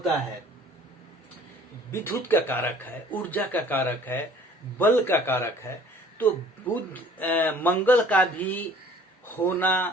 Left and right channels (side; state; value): both; normal; correlation 0.52